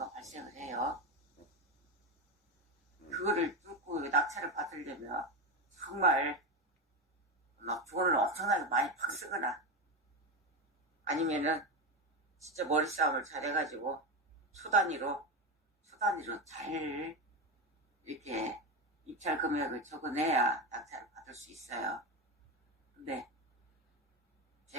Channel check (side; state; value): both; normal; correlation 0.16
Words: 발생을 해요. 그거를 뚫고 낙찰을 받으려면 정말 막 돈을 엄청나게 많이 팍 쓰거나 아니면은 진짜 머리싸움을 잘 해가지고 초 단위로 잘 이렇게 입찰 금액을 적어내야 낙찰을 받을 수 있어요. 근데